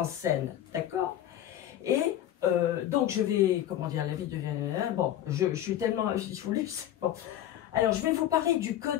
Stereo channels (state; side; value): quieter; right; 11.9 dB